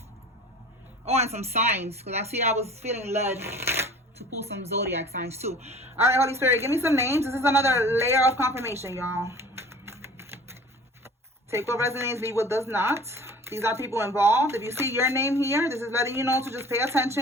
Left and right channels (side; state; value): both; normal; correlation 0.45